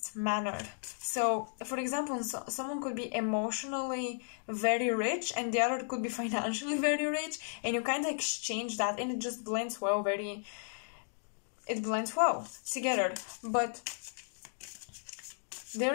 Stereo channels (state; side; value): silent; right; digital silence